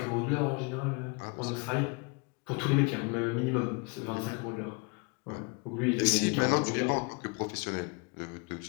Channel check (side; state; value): right; quieter; 30.8 dB